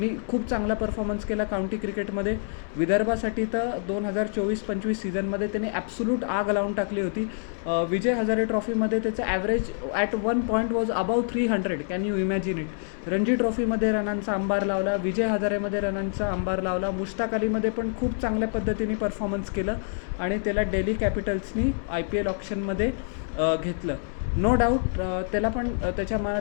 खूप चांगला परफॉर्मन्स केला काउंटी क्रिकेटमध्ये. विदर्भासाठी तर 2024-25 सीझनमध्ये त्यांनी ॲब्सोल्यूट आग लावून टाकली होती. विजय हजारे ट्रॉफीमध्ये त्याचं average at 1 point was above 300. Can you imagine it. Ranji ट्रॉफीमध्ये रनांचा अंबार लावला, विजय हजारेमध्ये रनांचा अंबार लावला, मुश्ताक अलीमध्ये पण खूप चांगल्या पद्धतीने परफॉर्मन्स केलं आणि त्याला दिल्ली कॅपिटल्सनी IPL ऑप्शनमध्ये घेतलं. नो डाऊट त्याला पण त्याच्या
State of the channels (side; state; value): right; silent; 61 dB below the other